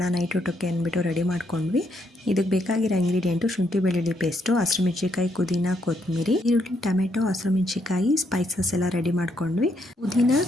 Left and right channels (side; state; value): both; normal; correlation 0.75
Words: ನೈಟ್ ಊಟಕ್ಕೆ ಅಂದ್ಬಿಟ್ಟು ರೆಡಿ ಮಾಡ್ಕೊಂಡ್ವಿ. ಇದಕ್ಕೆ ಬೇಕಾಗಿರೋ ಇಂಗ್ರೀಡಿಯೆಂಟು ಶುಂಠಿ ಬೆಳ್ಳುಳ್ಳಿ ಪೇಸ್ಟು, ಹಸಿರುಮೆಣ್ಸಿಕಾಯಿ, ಪುದೀನ, ಕೊತ್ತಂಬರಿ, ಈರುಳ್ಳಿ, ಟೊಮೆಟೊ, ಹಸಿರುಮೆಣ್ಸಿಕಾಯಿ, ಸ್ಪೈಸಸ್ ಎಲ್ಲ ರೆಡಿ ಮಾಡ್ಕೊಂಡ್ವಿ. ಪುದೀನ,